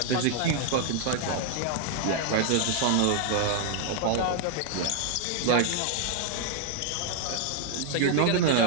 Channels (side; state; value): both; different; correlation 0.00